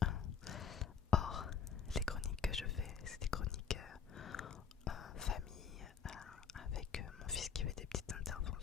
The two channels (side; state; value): right; quieter; 6.8 dB